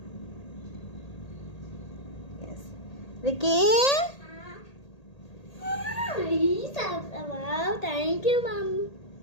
Yes Ricky, thank you mum.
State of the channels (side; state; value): right; late; 1.8 ms